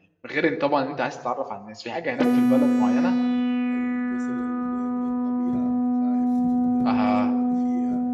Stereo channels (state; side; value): identical; both; correlation 1.00